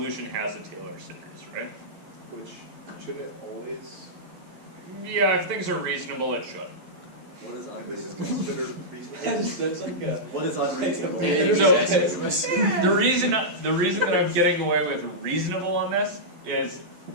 has a Taylor series, right? Which shouldn't it always? Yeah, if things are reasonable, it should. What is This is unreasonable? considered reasonable. That's like a. What is unreasonable? The reason that I'm getting away with reasonable on this is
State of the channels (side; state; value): left; late; 11 ms